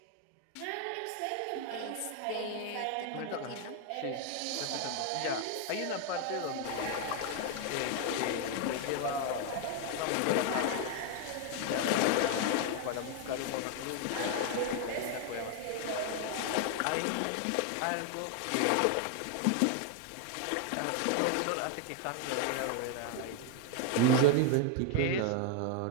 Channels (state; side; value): different; both; correlation 0.01